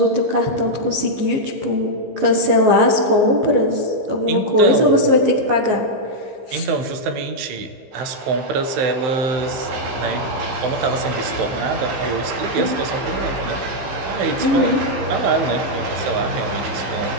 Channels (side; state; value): left; late; 15 ms